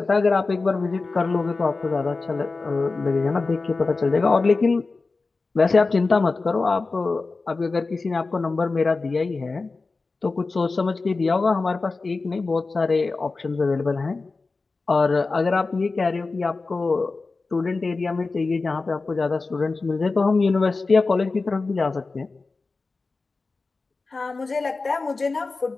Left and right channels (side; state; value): right; quieter; 3.8 dB